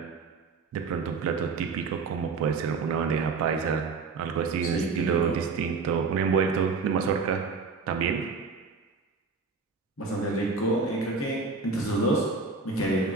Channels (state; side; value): quieter; left; 4.5 dB